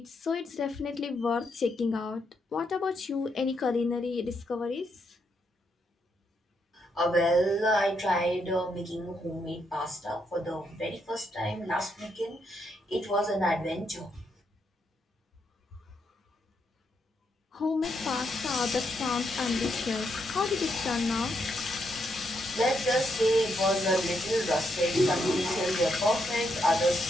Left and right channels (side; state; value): both; normal; correlation 0.78